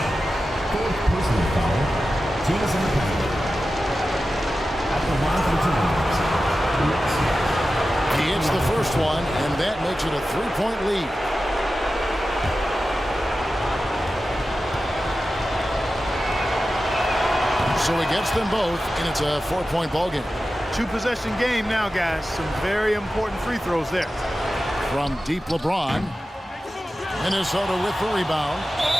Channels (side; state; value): both; normal; correlation 0.93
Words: personal foul. Team is in the penalty. At the line for He hits the first one, and that makes it a 3-point lead. So he gets them both, and it's a 4-point ball game. 2-possession game now, guys. Some very important free throws there. From deep LeBron. Minnesota with the rebound.